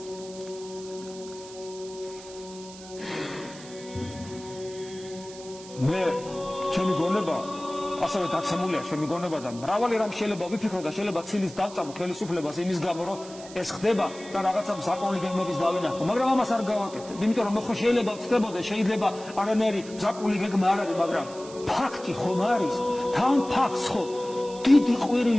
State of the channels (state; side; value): noise; right; hiss, 17 dB below the sound